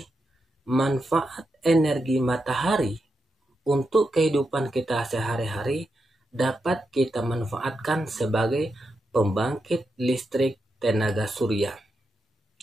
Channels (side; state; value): both; normal; correlation 0.86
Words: Manfaat energi matahari untuk kehidupan kita sehari-hari dapat kita manfaatkan sebagai pembangkit listrik tenaga surya.